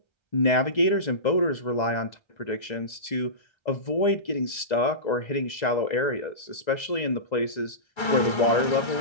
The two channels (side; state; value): right; late; 2.0 ms